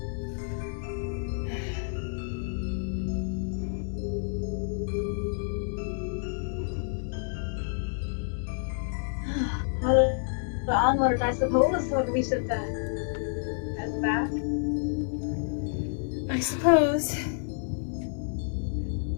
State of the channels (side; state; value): right; silent; digital silence